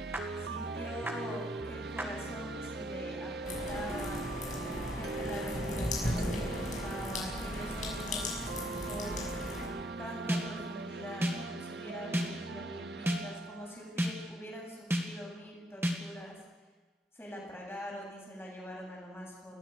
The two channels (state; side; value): normal; both; correlation 0.69